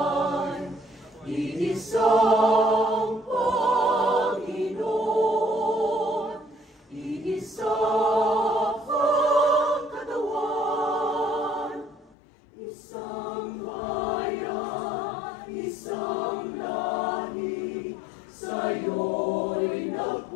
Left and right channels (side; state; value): right; drops out; at 12.2 s